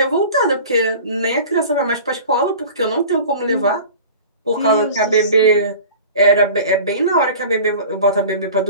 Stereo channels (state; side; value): inverted; both; correlation -0.40